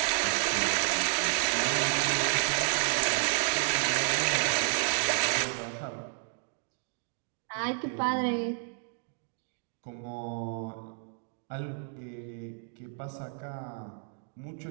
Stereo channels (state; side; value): silent; left; 57 dB below the other